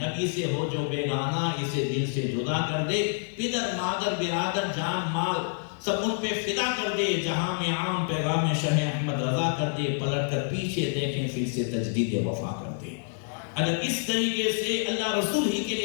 نبی سے ہو جو بیگانہ اسے دل سے جدا کر دے، پدر مادر برادر جان مال سب ان پہ فدا کر دے، جہاں میں عام پیغام شہ احمد رضا کر دے، پلٹ کر پیچھے دیکھیں پھر سے تجدید وفا کر دے۔ اگر اس طریقے سے اللہ رسول ہی کے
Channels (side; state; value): right; silent; digital silence